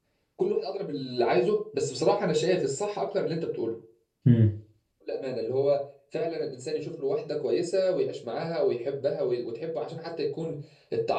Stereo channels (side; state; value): both; identical; correlation 1.00